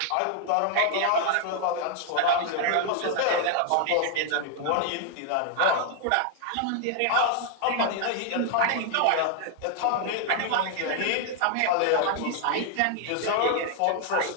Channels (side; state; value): both; different; correlation 0.00